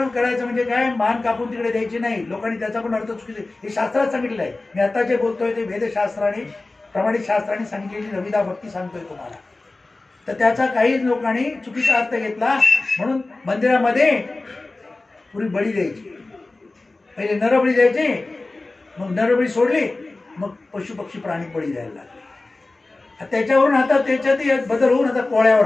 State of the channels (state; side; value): quieter; right; 3.2 dB